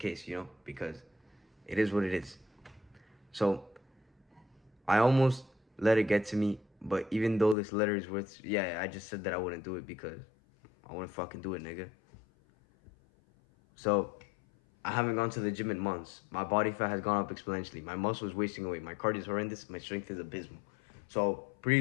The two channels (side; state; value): right; drops out; at 7.6 s